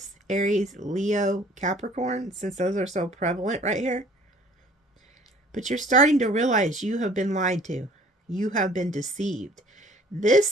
Aries, Leo, Capricorn, since those are so prevalent right here. But you're starting to realize you have been lied to. You have been deceived. This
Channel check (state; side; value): normal; both; correlation 0.54